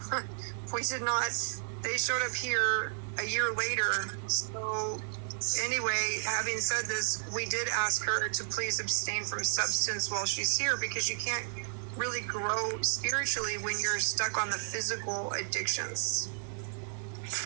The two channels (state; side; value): silent; left; 56 dB below the other